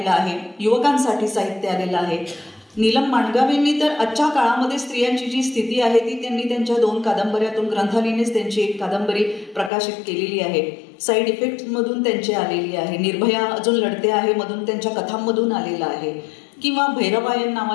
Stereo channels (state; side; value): drops out; right; at 9.7 s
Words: आहे, युवकांसाठी साहित्य आलेलं आहे. नीलम माणगावेंनी तर आजच्या काळामध्ये स्त्रियांची जी स्थिती आहे ती त्यांनी त्यांच्या 2 कादंबऱ्यातून ग्रंथालीनेच त्यांची एक कादंबरी प्रकाशित केलेली आहे. साईड इफेक्टमधून त्यांची आलेली आहे. निर्भया अजून लढते आहे मधून त्यांच्या कथांमधून आलेला आहे किंवा भैरवायन